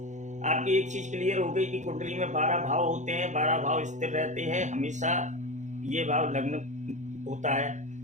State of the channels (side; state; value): left; late; 0.35 ms